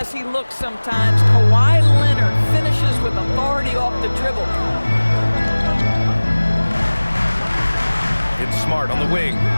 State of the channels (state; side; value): inverted; both; correlation -1.00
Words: he looks sometimes, Kawhi Leonard finishes with authority off the dribble. It's Smart on the wing.